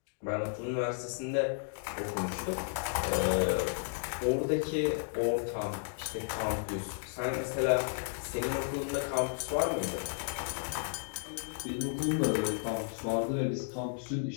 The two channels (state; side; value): silent; right; digital silence